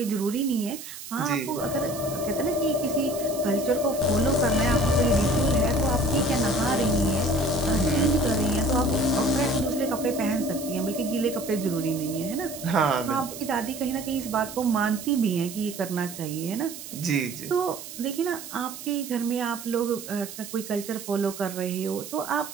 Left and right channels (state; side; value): noise; right; hiss, 12 dB below the sound